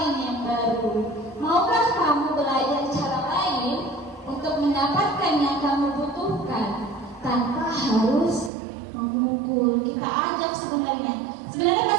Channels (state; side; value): drops out; left; at 8.5 s